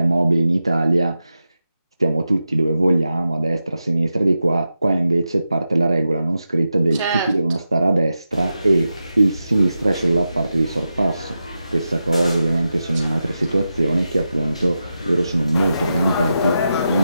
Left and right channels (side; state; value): both; inverted; correlation -0.90